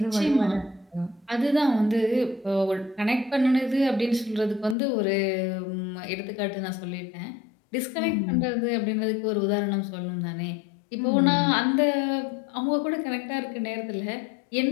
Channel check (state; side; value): drops out; right; at 4.8 s